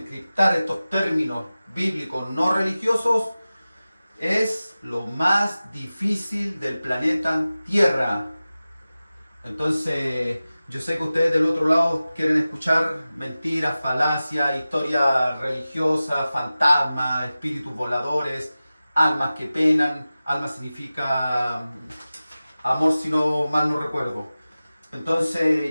estos términos bíblicos no religiosos es lo más difícil del planeta Tierra. Entonces, yo sé que ustedes del otro lado quieren escuchar mentiras, falacias, historias religiosas, fantasmas, espíritus voladores, almas que penan. Alma significa amor, si no mal no recuerdo. Entonces,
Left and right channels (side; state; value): both; inverted; correlation -0.96